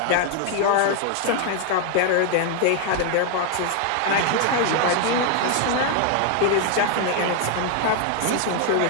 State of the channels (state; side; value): different; both; correlation 0.00